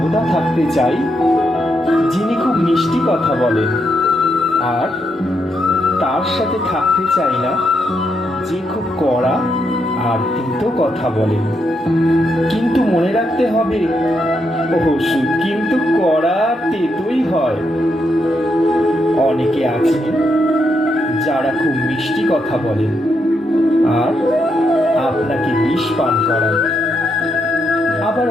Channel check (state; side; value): normal; both; correlation 0.80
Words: থাকতে চাই যিনি খুব মিষ্টি কথা বলেন, আর তার সাথে থাকতে চাই না যে খুব কড়া আর তিতো কথা বলেন। কিন্তু মনে রাখতে হবে, ওষুধ কিন্তু কড়া তেতোই হয়। অনেকে আছেন যারা খুব মিষ্টি কথা বলেন আর আপনাকে বিষ পান করান। আবার